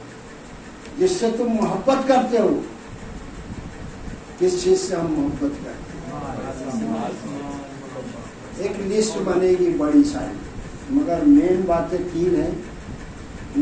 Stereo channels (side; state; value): both; identical; correlation 1.00